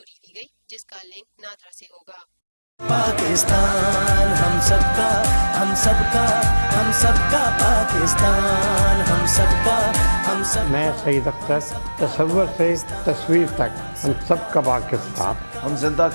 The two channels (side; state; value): both; inverted; correlation -1.00